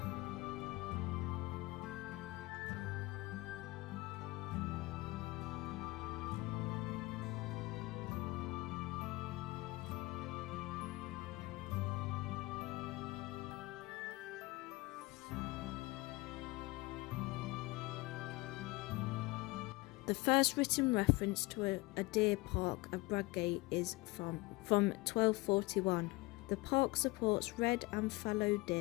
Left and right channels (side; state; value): right; quieter; 22.4 dB